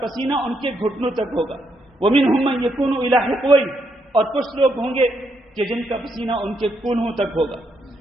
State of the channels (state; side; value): normal; both; correlation 0.77